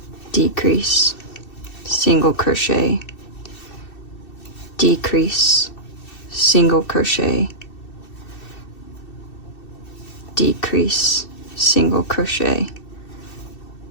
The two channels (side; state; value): right; late; 2.6 ms